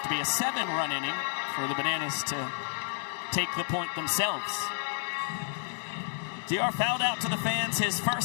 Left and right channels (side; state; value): right; silent; digital silence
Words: to be a 7-run inning for the Bananas to take the point themselves. DR fouled out to the fans his